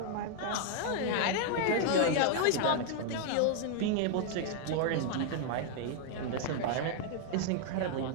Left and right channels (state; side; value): different; both; correlation 0.00